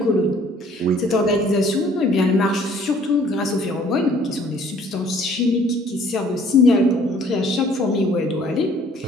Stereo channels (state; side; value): normal; both; correlation 0.57